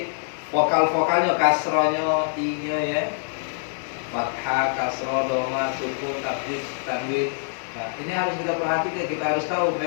vokal-vokalnya, kasronya, i-nya ya, fathah, kasroh, doma, sukun, tasdid, tanwin. Nah, ini harus kita perhatikan, kita harus tahu.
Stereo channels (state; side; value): silent; right; digital silence